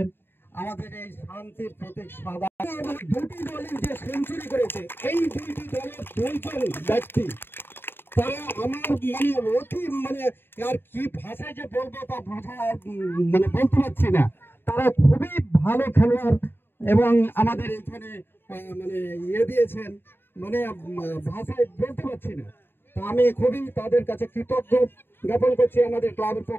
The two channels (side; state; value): right; late; 0.10 ms